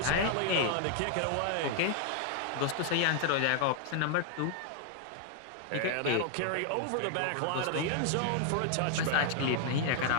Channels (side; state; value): both; different; correlation 0.00